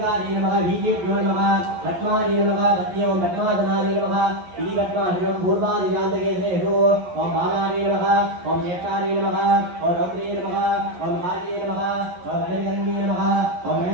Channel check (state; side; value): late; left; 11 ms